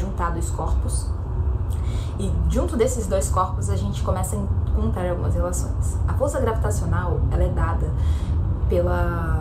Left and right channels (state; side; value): identical; both; correlation 1.00